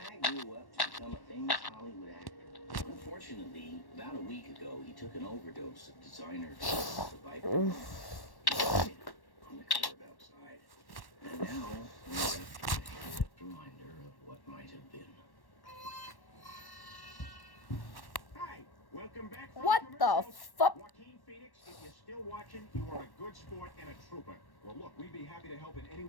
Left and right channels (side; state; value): right; late; 1.1 ms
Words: grew up to become a famous Hollywood actor. Unfortunately, about a week ago, he took an overdose of designer drugs, the Viper. On the curb outside. And now, we're left with a headlit reminder of what might have been. Hi, welcome back. from What the commercials. fuck? Joaquin Phoenix, if you're still watching, you are a good sport and a trooper. Well, look, we'd be happy to help in any